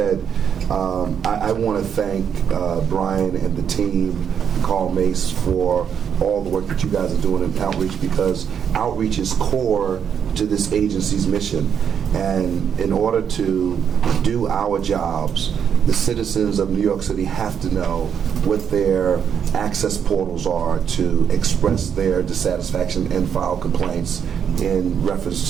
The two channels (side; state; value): left; quieter; 7.8 dB